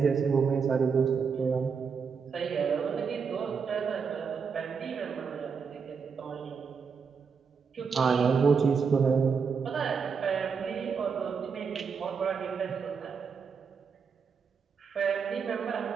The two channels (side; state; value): left; quieter; 5.8 dB